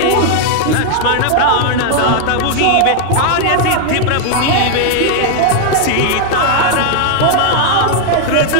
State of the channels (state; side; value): different; both; correlation 0.00